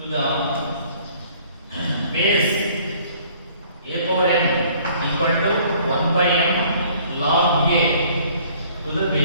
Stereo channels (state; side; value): inverted; both; correlation -0.57